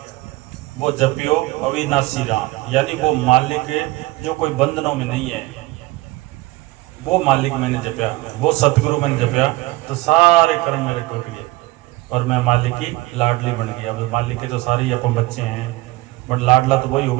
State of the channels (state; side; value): quieter; left; 20.0 dB